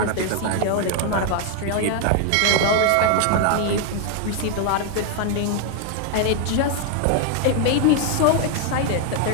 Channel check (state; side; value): different; both; correlation 0.01